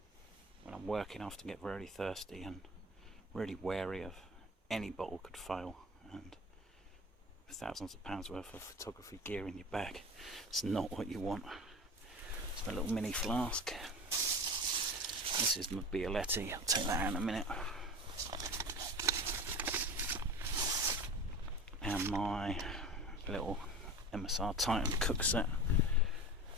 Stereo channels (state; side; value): normal; both; correlation 0.32